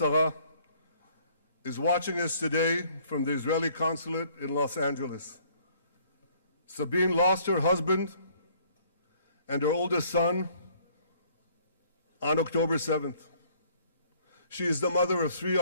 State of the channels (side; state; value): both; inverted; correlation -0.60